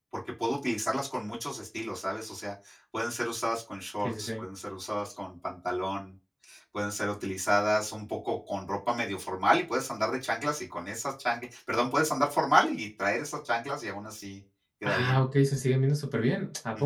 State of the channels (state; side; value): identical; both; correlation 1.00